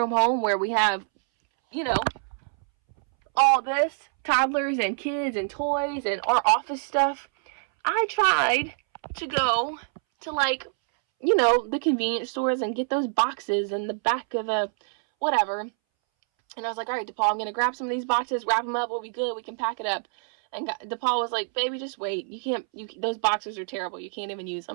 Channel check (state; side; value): silent; left; 61 dB below the other